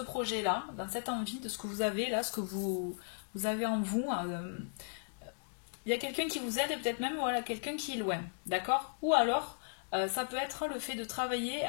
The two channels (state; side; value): silent; right; digital silence